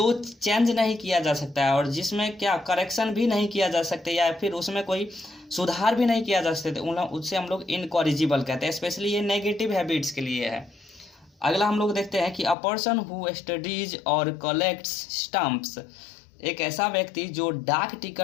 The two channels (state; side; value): drops out; right; at 12.6 s